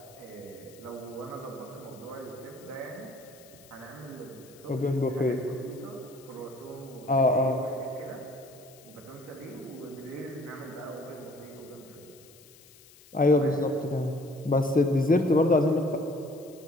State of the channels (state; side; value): noise; left; hiss, 24 dB below the sound